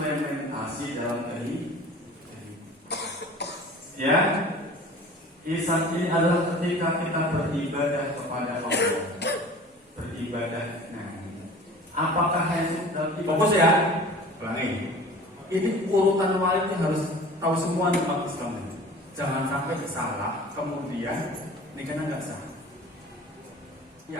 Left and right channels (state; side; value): normal; both; correlation 0.42